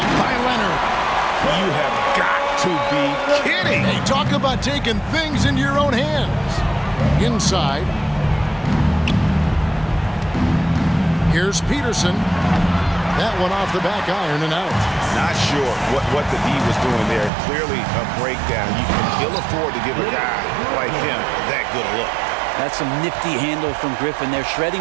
by Leonard. You have got to be kidding. Hey, talk about taking things into your own hands. Inside. Here's Peterson. That one off the back iron and out. Not sure what the D was doing there. Clearly a breakdown. You can ill afford to give a guy like him that good a look. That's some nifty handle from Griffin. They're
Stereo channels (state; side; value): drops out; left; at 17.3 s